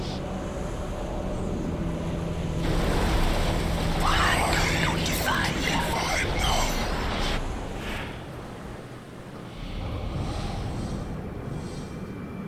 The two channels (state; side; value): identical; both; correlation 1.00